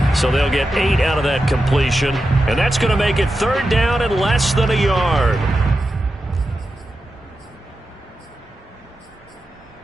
So they'll get 8 out of that completion. And that's going to make it 3rd down and less than a yard.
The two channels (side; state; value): both; normal; correlation 0.90